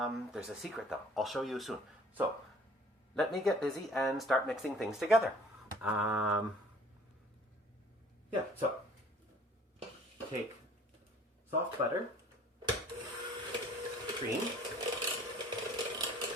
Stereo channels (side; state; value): both; normal; correlation 0.53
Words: a secret though. I'll show you soon. So let me get busy and start mixing things together. Yeah, so take soft butter, cream.